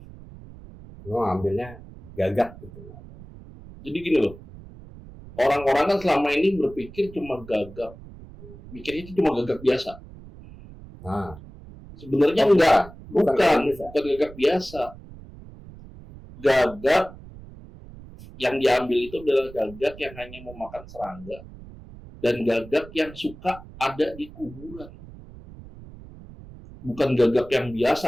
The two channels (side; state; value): right; noise; rumble, 17 dB below the sound